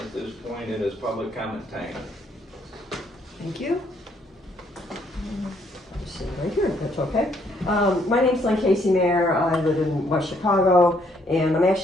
this point, it is public comment time. Thank you. Just sit right here, if that's okay. My name's Lynn Casey Mayer. I live in West Chicago, and I'm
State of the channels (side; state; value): both; normal; correlation 0.69